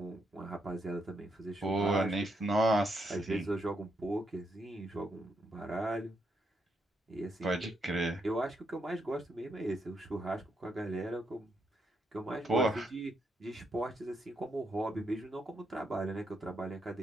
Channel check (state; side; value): normal; both; correlation 0.79